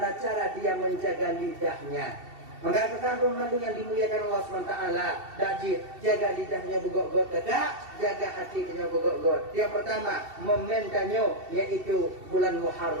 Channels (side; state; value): left; late; 2.7 ms